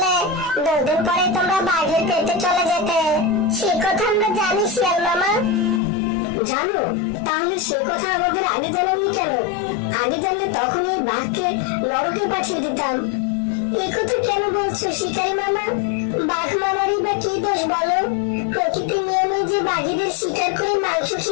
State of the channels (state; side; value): drops out; right; at 5.8 s